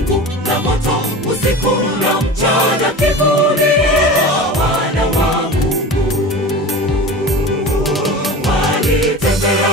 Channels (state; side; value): normal; both; correlation 0.33